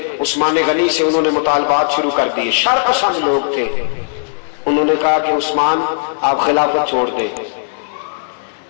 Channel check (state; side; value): silent; right; 65 dB below the other